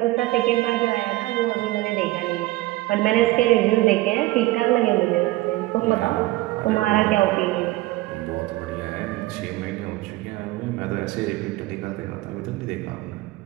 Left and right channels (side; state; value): left; quieter; 18.5 dB